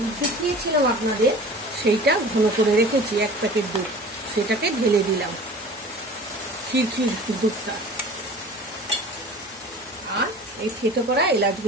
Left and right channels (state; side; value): normal; both; correlation 0.41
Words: দেখিয়েছিলাম আপনাদের, সেইটা ঘন করে রেখেছি 1 প্যাকেট দুধ, সেটাকে ঢেলে দিলাম, ক্ষীর দুধটা। আর এই থেতো করা